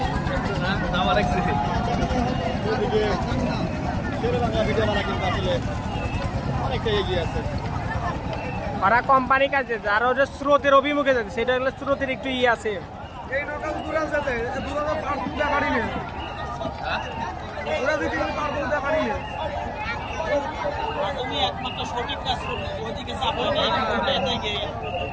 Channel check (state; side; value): identical; both; correlation 1.00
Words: অনেকটা এগিয়ে আছে। ওরা কোম্পানি কাজে আর ওদের স্রোতের অভিমুখে যাচ্ছে, সেটা হলো স্রোতের একটু ইয়ে আছে। এই নৌকা দূরে যেতে দূরে পার তুলতে পারি না, দূরে দিতে পার তুলতে পারি না। তুমি একমাত্র সঠিক কাজ করবে, ওইদিকে চাপো না,